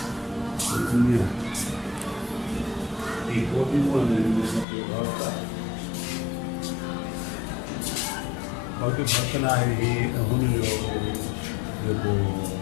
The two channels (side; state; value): right; drops out; at 4.7 s